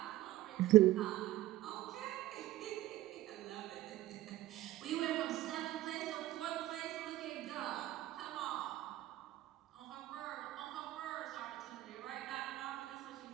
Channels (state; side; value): quieter; left; 15.1 dB